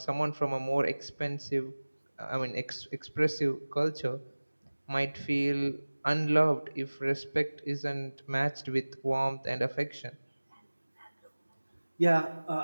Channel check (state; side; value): inverted; both; correlation -1.00